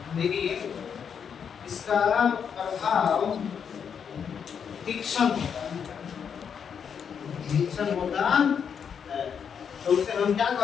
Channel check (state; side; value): quieter; right; 7.2 dB